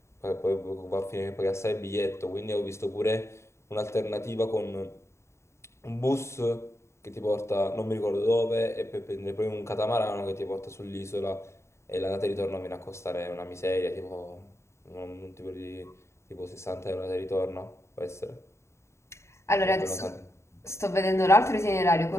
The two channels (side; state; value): right; late; 0.13 ms